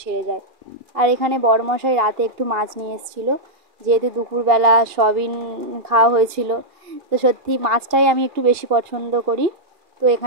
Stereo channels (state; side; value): late; left; 2.4 ms